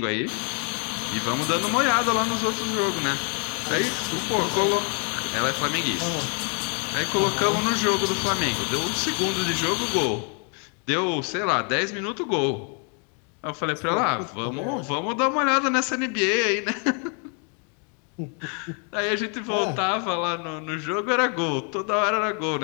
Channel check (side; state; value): right; quieter; 39.3 dB